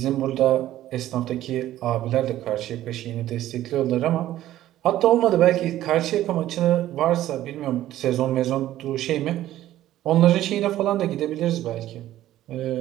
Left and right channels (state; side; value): quieter; left; 13.7 dB